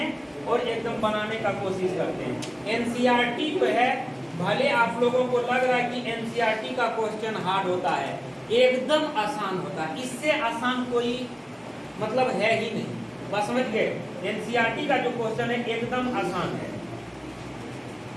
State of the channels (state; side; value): identical; both; correlation 1.00